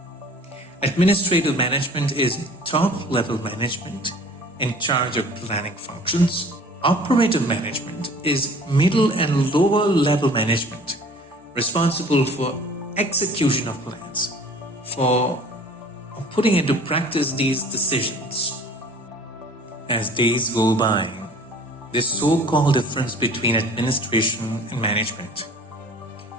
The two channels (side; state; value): both; normal; correlation 0.47